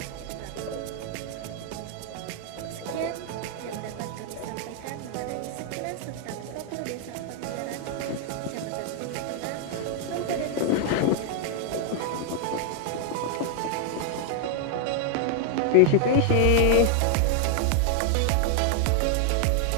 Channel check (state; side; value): different; both; correlation 0.00